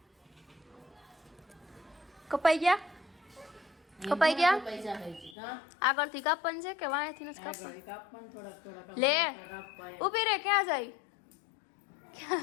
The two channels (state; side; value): drops out; right; at 5.4 s